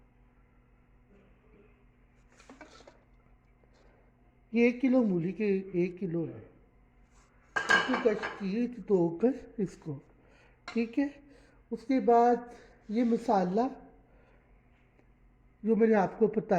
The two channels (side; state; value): both; identical; correlation 1.00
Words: ये 1 किलो मूली के 1 किलो है। इसको कश की धोकर इसको। ठीक है। उसके बाद ये मसाला जो मैंने आपको